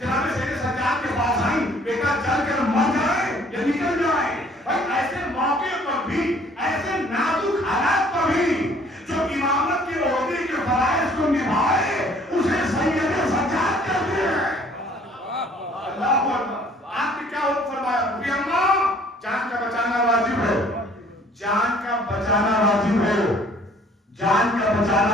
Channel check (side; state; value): both; normal; correlation 0.57